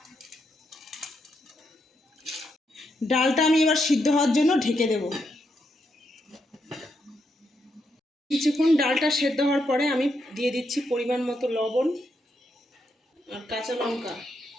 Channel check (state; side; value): normal; both; correlation 0.81